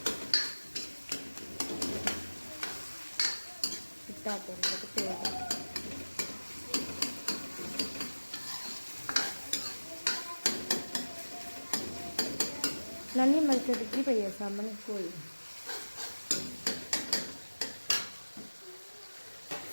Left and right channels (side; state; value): both; inverted; correlation -1.00